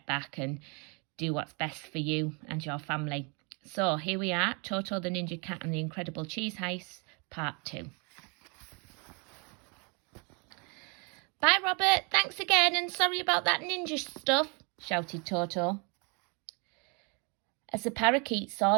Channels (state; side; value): quieter; left; 33.1 dB